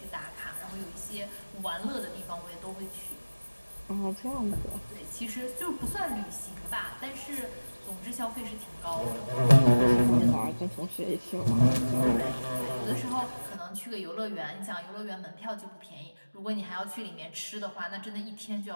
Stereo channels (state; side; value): inverted; both; correlation -1.00